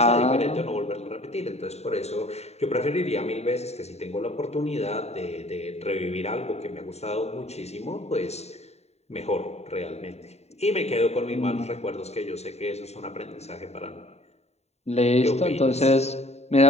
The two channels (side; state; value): right; late; 0.31 ms